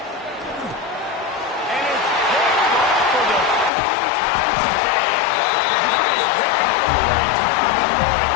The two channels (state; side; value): drops out; right; at 3.7 s